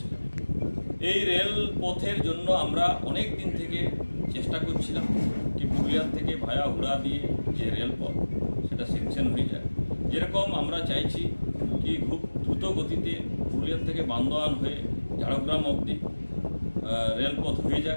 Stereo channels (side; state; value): both; inverted; correlation -1.00